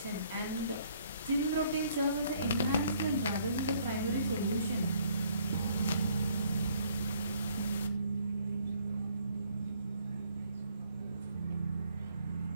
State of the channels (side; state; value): both; inverted; correlation -0.64